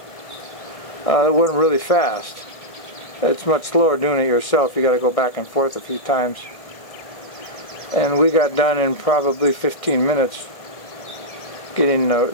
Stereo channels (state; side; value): late; right; 1.6 ms